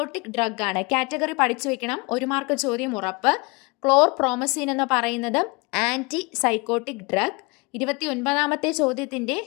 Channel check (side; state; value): right; quieter; 28.2 dB